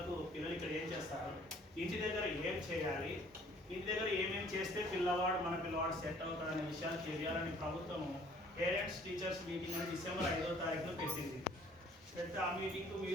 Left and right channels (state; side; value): normal; both; correlation 0.56